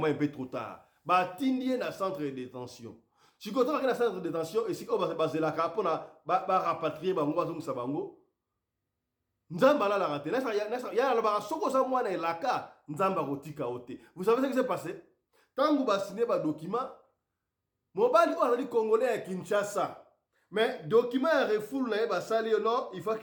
peu trop tard ba tindie na centre de détention si quand on a un centre de détention et si on va baser la carte pour rapatrier bango bazongisa bango nzamba la raté ya la ba soko sa mwana elaka nzamba kotika ote. Vous savez ce qui s'est passé? Tangu ba signé ba document Mobali on a dit congolais à Kinshasa mais document ya refoule na ba sali non il faut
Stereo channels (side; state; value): both; identical; correlation 1.00